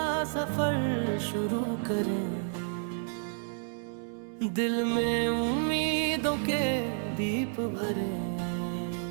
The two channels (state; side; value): silent; left; 57 dB below the other